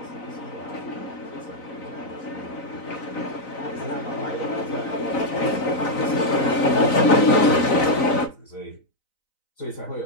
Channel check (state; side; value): late; right; 4.0 ms